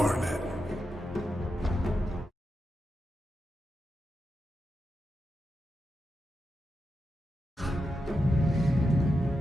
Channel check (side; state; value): both; normal; correlation 0.88